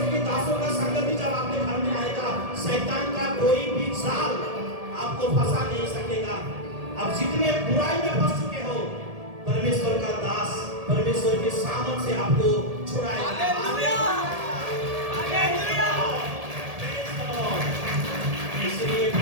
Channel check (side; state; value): left; late; 1.7 ms